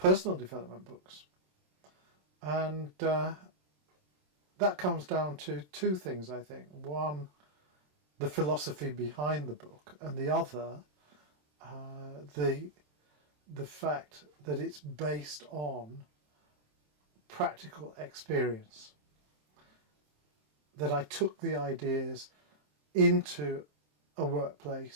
development books. And that comes down to two things, I think. One, the philosophy behind the book, and the other, the fact that it's based on practical experience. That I took the ideas into a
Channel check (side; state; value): left; late; 27 ms